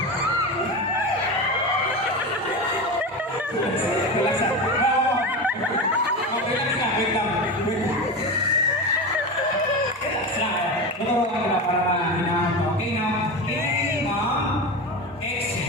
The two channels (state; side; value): normal; both; correlation 0.22